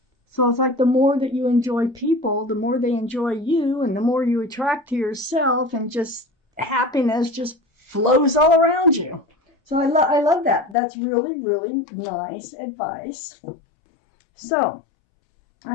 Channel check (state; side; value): drops out; right; at 10.8 s